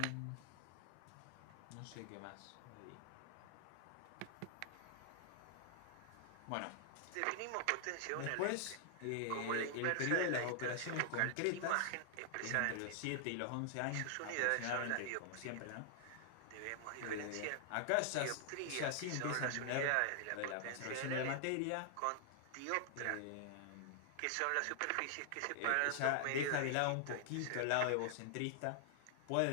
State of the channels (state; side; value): different; both; correlation -0.01